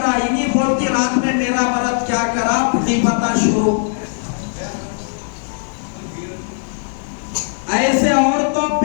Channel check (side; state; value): right; silent; 60 dB below the other